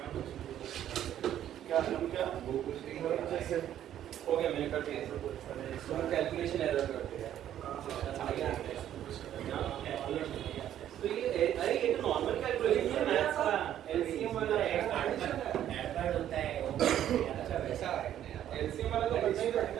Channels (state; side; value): quieter; left; 11.2 dB